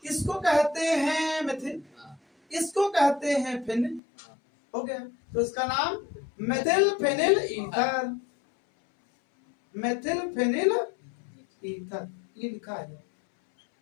इसको कहते हैं मेथिल, इसको कहते हैं फिनिल, हो गया। तो इसका नाम methyl phenyl ether, methyl phenyl ether, ये लिखा है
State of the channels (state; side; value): drops out; right; at 4.0 s